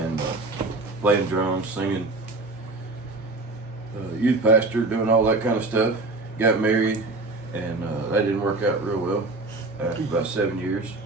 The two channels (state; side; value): quieter; left; 3.2 dB